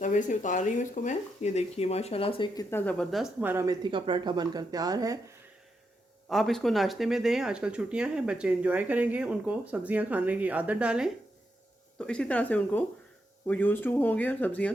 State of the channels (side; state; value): both; normal; correlation 0.83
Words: तवे से उतार रही हूँ इसको मैं। ये देखिए माशाल्लाह से कितना ज़बरदस्त हमारा मेथी का पराठा बनकर तैयार है। आप इसको नाश्ते में दें, आजकल छुट्टियां हैं, बच्चे एंजॉय करेंगे, उनको सब्जियां खाने की आदत डालें, तो इसी तरह से उनको वो यूज़ टू होंगे और सब्जियां